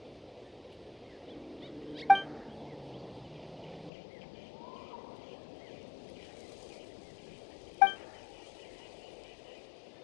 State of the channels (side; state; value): right; drops out; at 3.9 s